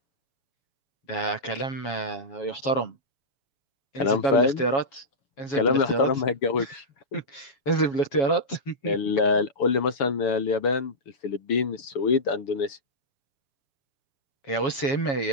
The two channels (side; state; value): right; late; 7.3 ms